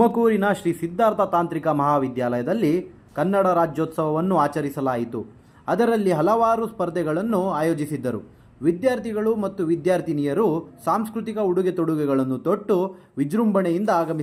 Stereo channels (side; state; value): both; identical; correlation 1.00